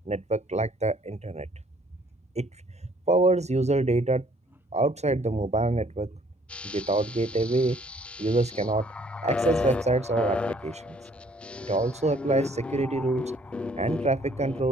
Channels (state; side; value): normal; both; correlation 0.61